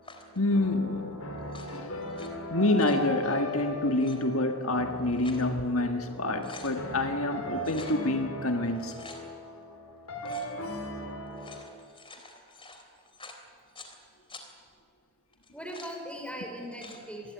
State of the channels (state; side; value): normal; both; correlation 0.24